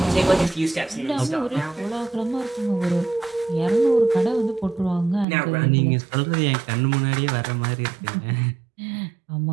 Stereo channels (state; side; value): drops out; left; at 5.2 s